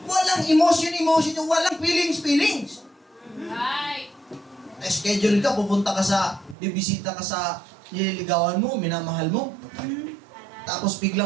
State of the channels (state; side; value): drops out; left; at 6.6 s